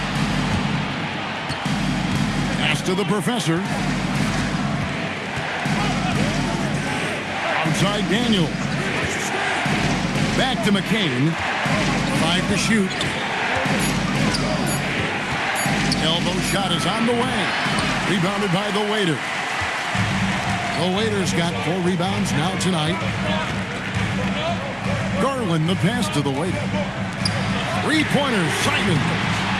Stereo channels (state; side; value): identical; both; correlation 1.00